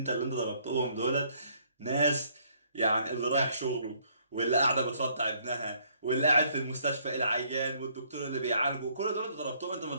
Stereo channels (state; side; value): inverted; both; correlation -0.66